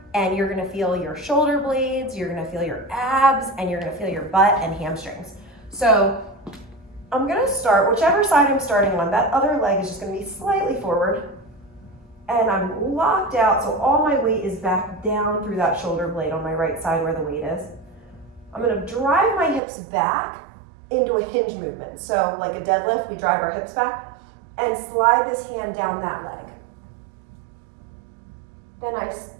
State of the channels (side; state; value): left; drops out; at 19.6 s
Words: and you're going to feel your shoulder blades, you're going to feel your abs, and you're going to feel your butt and hamstrings. So I'm going to start, whichever side I'm starting on, that other leg is just going to be slightly forward, and I'm locked out, so all my weight is back down through that shoulder blade on my right side where the weight is. I'm going to drive my hips back into a hinge movement. So like a deadlift, we drive our hips back and slide this hand down that leg. Then